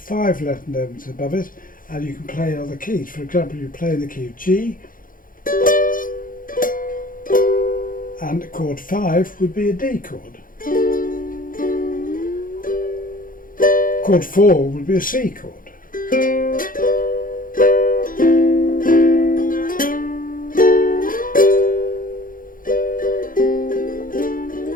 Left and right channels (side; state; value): right; late; 0.40 ms